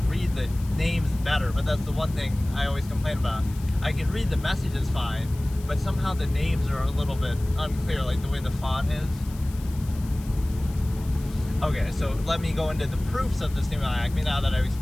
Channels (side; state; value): left; noise; hiss, 20 dB below the sound